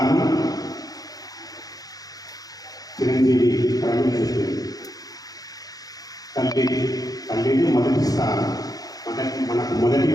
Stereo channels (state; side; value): late; right; 0.18 ms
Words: చిరంజీవి ప్రవీణ్ చెప్పింది. తల్లిని మొదటి స్థానం. మనకు మొదటి